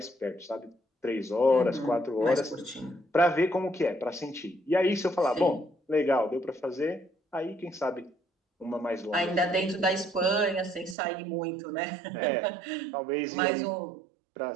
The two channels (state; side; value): drops out; left; at 11.0 s